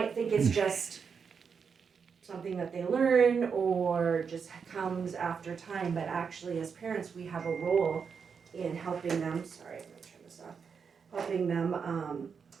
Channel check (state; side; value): quieter; left; 6.1 dB